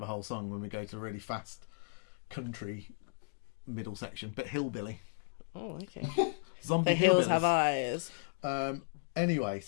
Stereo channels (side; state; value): right; silent; digital silence